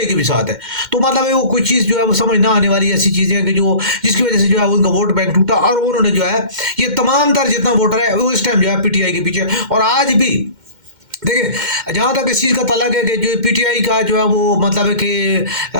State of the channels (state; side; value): late; left; 2.1 ms